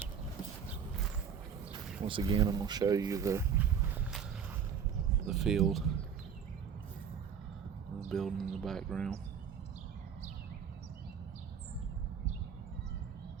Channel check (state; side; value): quieter; left; 7.4 dB